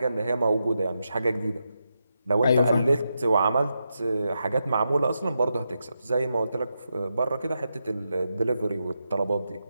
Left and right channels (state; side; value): inverted; both; correlation -0.86